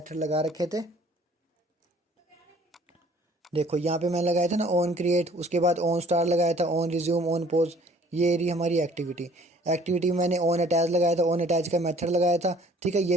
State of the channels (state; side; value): normal; both; correlation 0.55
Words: लगा रखे थे, देखो यहाँ पे मैं लगाया था ना ऑन क्रिएट, उसके बाद ऑन स्टार लगाया था, ऑन रिज्यूम, ऑन पोज, ये रही हमारी एक्टिविटी में मैंने ऑन अटैच लगाया था, ऑन अटैच का मेथड लगाया था, ठीक है। ये